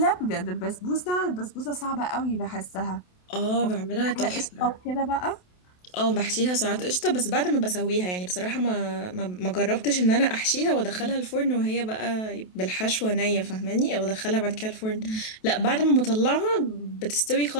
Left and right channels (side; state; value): right; late; 28 ms